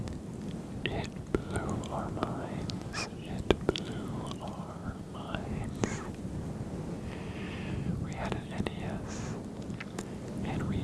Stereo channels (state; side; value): identical; both; correlation 1.00